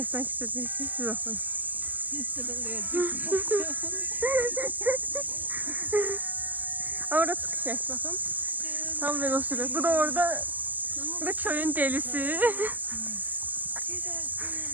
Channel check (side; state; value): left; late; 0.084 ms